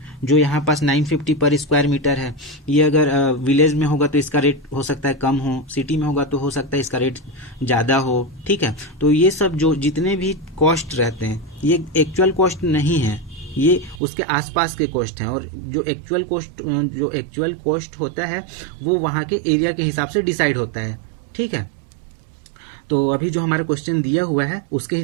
जो यहाँ पास 950 पर स्क्वायर मीटर है, ये अगर विलेज में होगा तो इसका रेट हो सकता है कम हो, सिटी में होगा तो हो सकता है इसका रेट ज़्यादा हो। ठीक है, तो ये सब जो जितने भी कॉस्ट रहते हैं ये एक्चुअल कॉस्ट नहीं है, ये उसके आसपास के कॉस्ट हैं, और जो एक्चुअल कॉस्ट होता है वो वहाँ के एरिया के हिसाब से डिसाइड होता है। ठीक है, तो अभी जो हमारा क्वेश्चन दिया हुआ है उसके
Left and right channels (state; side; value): drops out; left; at 14.0 s